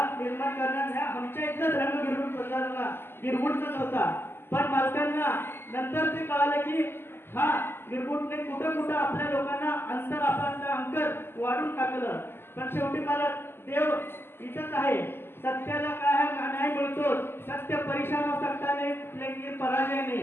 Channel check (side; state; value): right; late; 0.11 ms